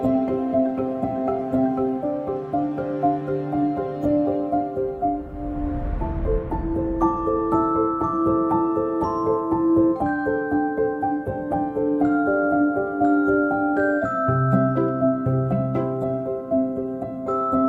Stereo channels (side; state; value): both; identical; correlation 1.00